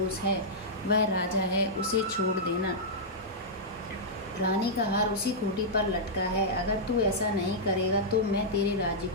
है, वह राजा है, उसे छोड़ देना। रानी का हार उसी खूंटी पर लटका है। अगर तू ऐसा नहीं करेगा तो मैं तेरे राज्य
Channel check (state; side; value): normal; both; correlation -0.10